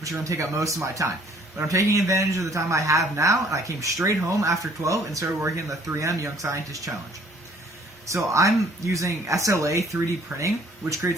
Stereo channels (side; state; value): both; normal; correlation 0.58